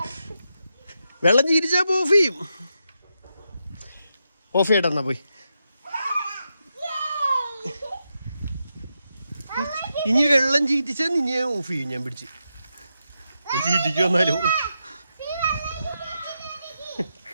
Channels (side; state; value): both; inverted; correlation -0.86